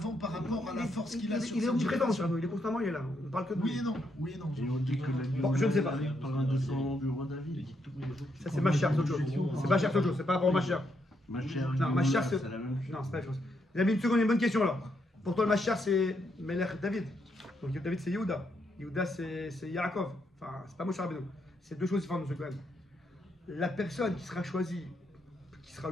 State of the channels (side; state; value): both; normal; correlation 0.78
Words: par rapport à la force qu'il a sur Il est cette omniprésent, génération. Moshe Rabbeinu. Il est constamment, il est là. On ne parle que de Oui lui. et non, oui et non. Et on dit que la Bon, je ne sais pas. par un de son du roi David. Ça, c'est ma chère, c'est autre chose. C'est pas cher, c'est autre chose. C'est pas rapport à ma chère. Ma chère Non, ma chère, c'est la même chose. Non, c'est pas la même chose. Les amis, une seconde, une bonne question alors. Pour toi, le Machar, c'est Melech David. Donc David, c'est Yehuda. Yehuda, c'est Yaakov. Enfin, c'est pas Moshe Rabbeinu. C'est 2 choses différentes, monsieur Cohen. La personne qui sera choisie, qui sera